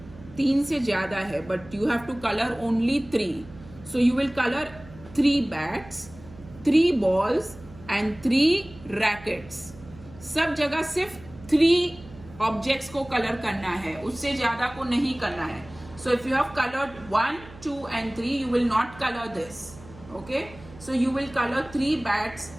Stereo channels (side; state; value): right; noise; hum, 19 dB below the sound